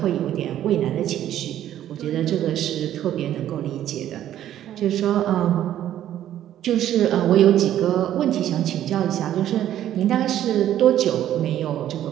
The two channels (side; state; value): left; quieter; 11.8 dB